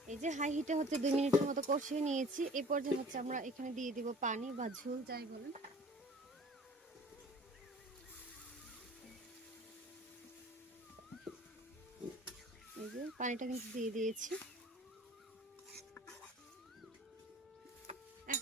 এই যে হাই হিটে হচ্ছে 2 মিনিটের মতো কষিয়ে নিয়েছি। এই পর্যায়ে হচ্ছে আমরা এখানে দিয়ে দিব পানি বা ঝোল যাই বলেন। এই যে পানিটা কিন্তু দিয়ে দিয়েছি।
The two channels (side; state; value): both; normal; correlation 0.47